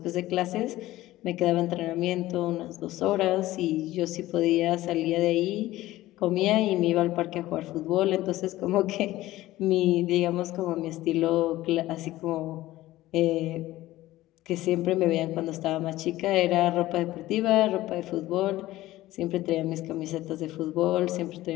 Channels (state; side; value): quieter; right; 16.4 dB